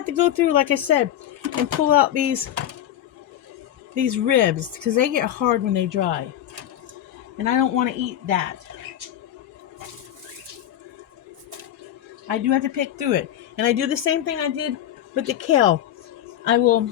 to go through, like I said, and pull out these ribs because they get hard when they dry. And I don't want to eat that. I do have to pick through it. And I do the same thing I did with the kale. I will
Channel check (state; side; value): quieter; right; 11.3 dB